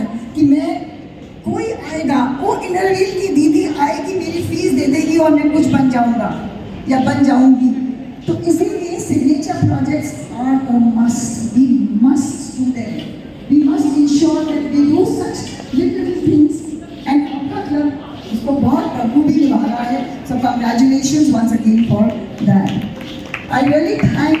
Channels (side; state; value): both; identical; correlation 1.00